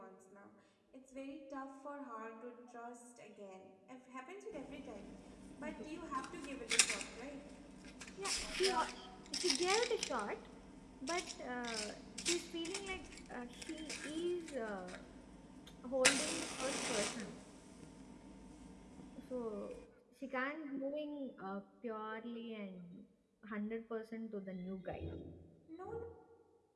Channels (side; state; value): both; identical; correlation 1.00